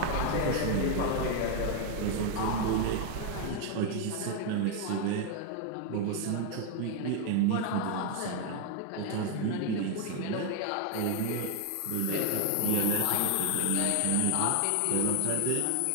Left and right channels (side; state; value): both; different; correlation 0.00